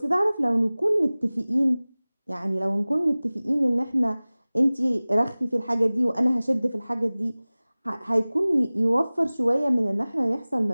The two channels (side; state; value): both; inverted; correlation -0.99